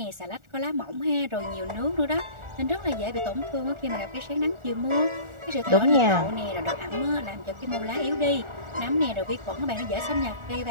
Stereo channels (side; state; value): left; late; 1.4 ms